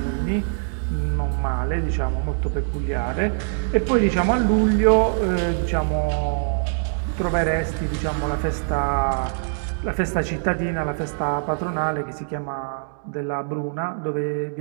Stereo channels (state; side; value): silent; left; digital silence